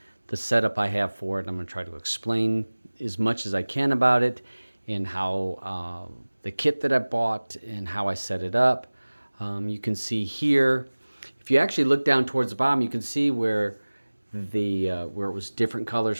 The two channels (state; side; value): inverted; both; correlation -1.00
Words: the setup I have for it. I'm going to try to explain as much as I can about it and how the kit that I bought and how I set it up. You can see here, if you actually look down towards the bottom, you can see where where it was different colors